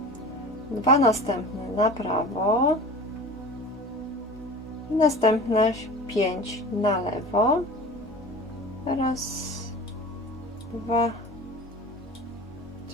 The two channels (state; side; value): normal; both; correlation 0.36